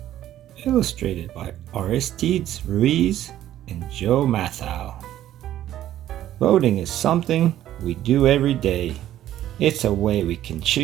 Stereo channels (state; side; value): quieter; left; 12.6 dB